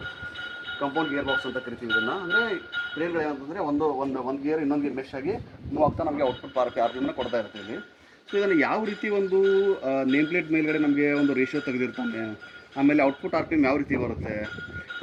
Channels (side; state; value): both; identical; correlation 1.00